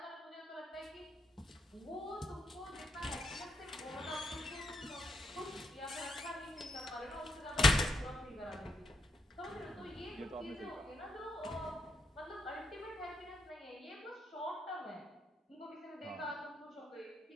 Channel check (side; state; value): both; normal; correlation 0.77